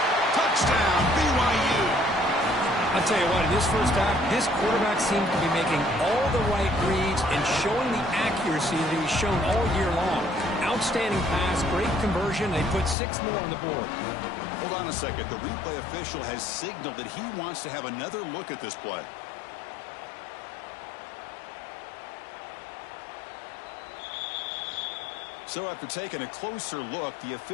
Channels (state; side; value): drops out; right; at 13.0 s